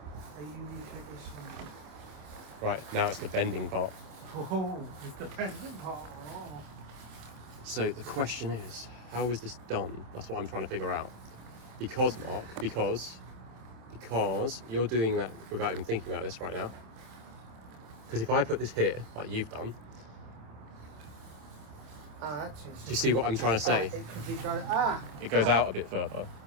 A Eureka-ish movie. Right, now it's the bending part. Oh, it's the pendant part. Oh. So the question is, how is this done? That's what I'm trying to figure out. Because, Mark, because you're doing that without even thinking about this right now. Because if I put this here, like you've done, Actually, do you see what I'm trying to say? it could be going... It goes out a bit further.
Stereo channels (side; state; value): left; late; 27 ms